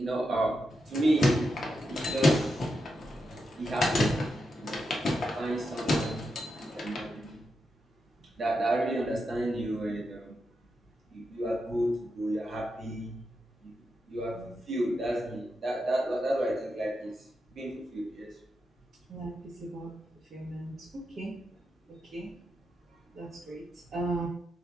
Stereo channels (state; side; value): normal; both; correlation 0.86